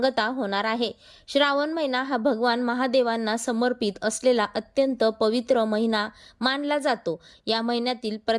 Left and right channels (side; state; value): both; identical; correlation 1.00